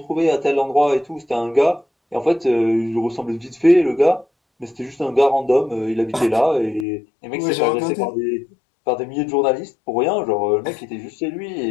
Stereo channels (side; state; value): right; drops out; at 6.9 s